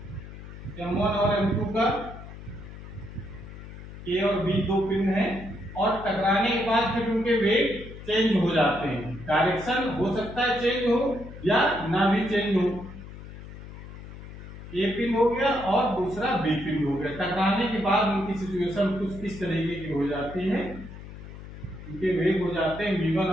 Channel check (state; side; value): noise; left; hum, 13 dB below the sound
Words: M1 और M2 का, A और B 2 पिंड हैं, और टकराने के बाद फिर उनके वेग चेंज हो जाते हैं। डायरेक्शन हो सकता है चेंज हो या ना भी चेंज हो। A पिंड हो गया और दूसरा B पिंड हो गया। टकराने के बाद उनकी सिचुएशन कुछ इस तरीके की हो जाती है, उनके वेग हो जाते हैं V1